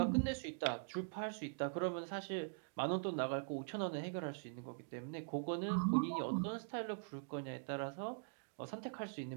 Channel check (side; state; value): left; silent; digital silence